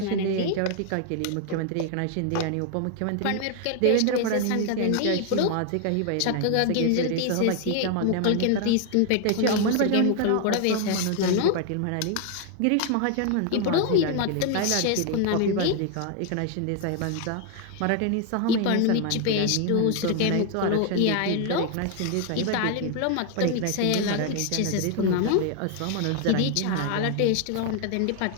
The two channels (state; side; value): different; both; correlation 0.00